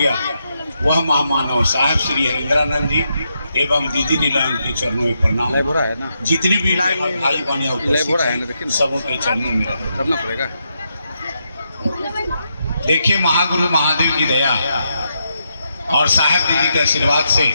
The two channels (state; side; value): inverted; both; correlation -0.82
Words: वह महामानव साहब श्री हरिंद्रानंद जी एवं दीदी नीलाम के चरणों में प्रणाम। जितने भी भाई बहन सबों के चरणों में करना पड़ेगा। देखिए, महागुरु महादेव की दया और साहब दीदी के आशीर्वाद से